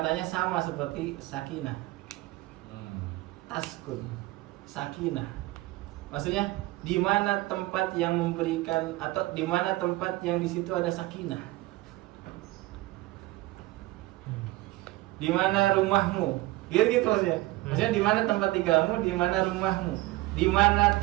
sama seperti sakinah. Taskun, sakinah. Maksudnya di mana tempat yang memberikan atau di mana tempat yang di situ ada sakinah? Di mana rumahmu? Gitu maksudnya. Maksudnya di mana tempat tinggalmu, di mana rumahmu? Di mana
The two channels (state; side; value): quieter; left; 19.1 dB